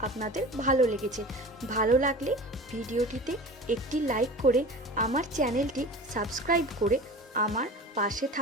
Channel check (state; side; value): normal; both; correlation 0.36